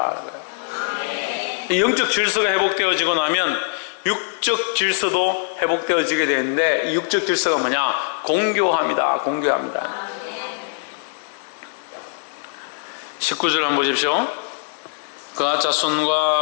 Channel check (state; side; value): silent; right; digital silence